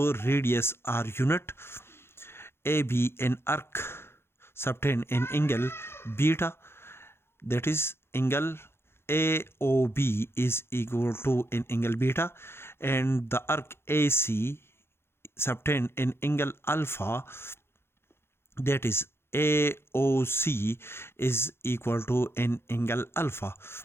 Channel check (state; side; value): late; right; 0.12 ms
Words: radius r unit. AB an arc subtend an angle beta, that is angle AOB is equal to an angle beta, and the arc AC subtend an angle alpha, that is AOC is equal to an angle alpha.